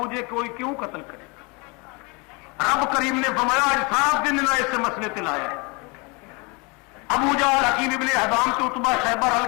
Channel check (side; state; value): right; quieter; 29.5 dB